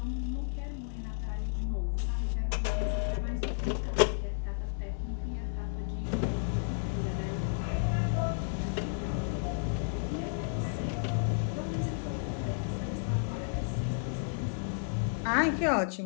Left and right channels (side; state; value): right; silent; digital silence